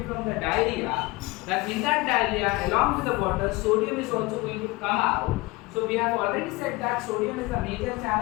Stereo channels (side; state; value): right; quieter; 22.8 dB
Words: from the diarrhea, that in that diarrhea along with the water, sodium is also going to come out. So we have already said that sodium is a major